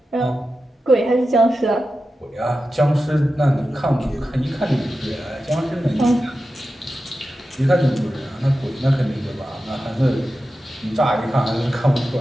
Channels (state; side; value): normal; both; correlation 0.92